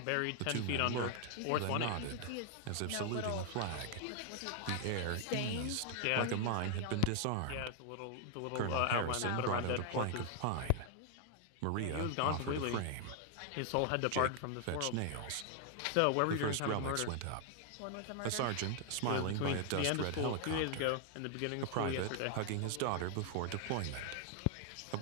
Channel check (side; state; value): both; different; correlation 0.00